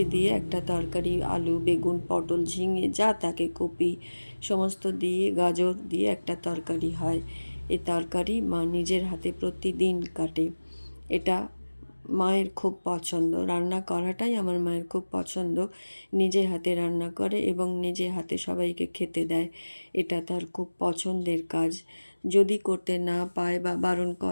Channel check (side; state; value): both; inverted; correlation -1.00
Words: দিয়ে একটা তরকারি, আলু, বেগুন, পটল, ঝিঙে যা থাকে, কপি সমস্ত দিয়ে, গাজর দিয়ে একটা তরকারি হয়। এই তরকারি মা নিজের হাতে প্রতিদিন কাটে। এটা মায়ের খুব পছন্দ। রান্না করাটাই আমার মায়ের খুব পছন্দ। নিজে হাতে রান্না করে এবং নিজে হাতে সবাইকে খেতে দেয়। এটা তার খুব পছন্দের কাজ। যদি করতে না পায় বা বারণ